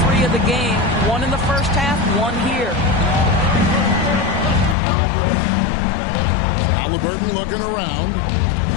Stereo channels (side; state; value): right; drops out; at 4.8 s